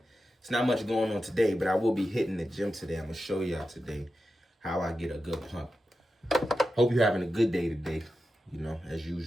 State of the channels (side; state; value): both; normal; correlation 0.91